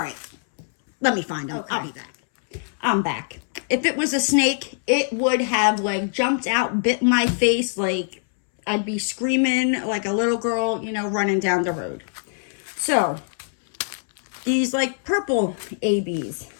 Let me find them. Okay. I'll be back. I'm back. If it was a snake, it would have like jumped out, bit my face, like I'd be screaming like a little girl, you know, running down the road. So, these like purple ABs.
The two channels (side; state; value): right; silent; 63 dB below the other